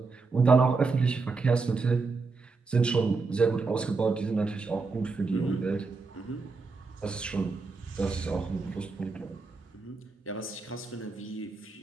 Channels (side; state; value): left; quieter; 4.1 dB